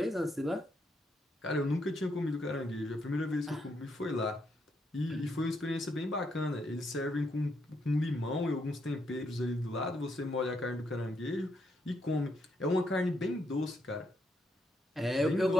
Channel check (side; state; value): both; normal; correlation 0.77